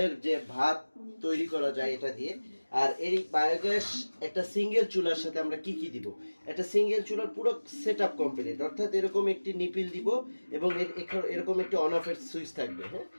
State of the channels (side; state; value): both; inverted; correlation -1.00